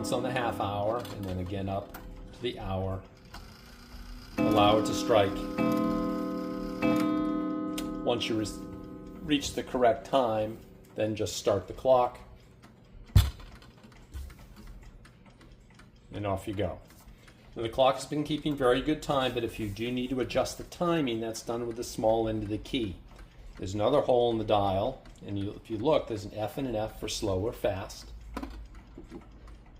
on the half hour, and then again up to the hour. Allow it to strike. Once you reach the correct time, then just start the clock, and off you go. Now, the clock has been keeping very good time, but if you do need to adjust the timing, that's done with the small end of the key. There's another hole in the dial, and if you look, there's an F and an F for slow or fast.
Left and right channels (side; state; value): both; identical; correlation 1.00